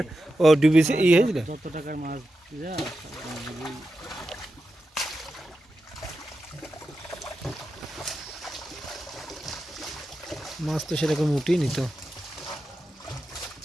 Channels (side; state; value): both; normal; correlation 0.90